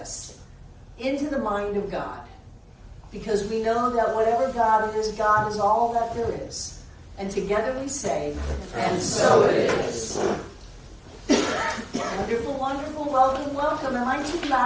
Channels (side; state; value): both; identical; correlation 1.00